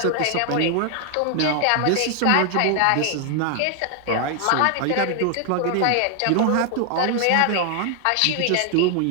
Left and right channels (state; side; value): different; both; correlation 0.00